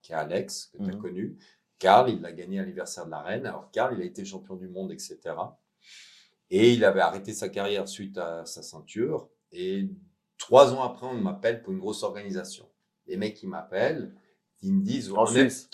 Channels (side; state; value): both; identical; correlation 1.00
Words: qui est Alex, que tu as connu. Karl, il l'a gagné à l'anniversaire de la reine. Alors, Karl, il a été champion du monde, etc. Et il avait arrêté sa carrière suite à sa ceinture. Et 3 ans après, on m'appelle pour une grosse organisation. Les mecs, ils m'appellent, ils me disent... En Suisse?